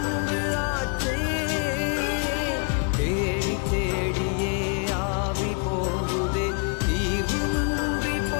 ஆச்சே. தேடி தேடியே ஆவி போகுதே, தீர்வுமின்றி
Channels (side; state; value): right; quieter; 38.2 dB